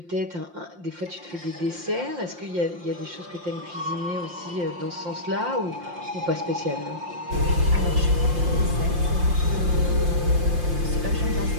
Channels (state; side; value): late; left; 5.7 ms